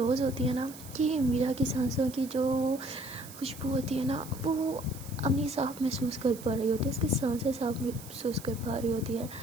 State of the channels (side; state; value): right; noise; hiss, 16 dB below the sound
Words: होती है ना कि मीरा की सांसों की जो खुशबू होती है ना वो अम्मी साफ महसूस कर पा रही होती है, उसकी सांसें साफ महसूस कर पा रही होती है।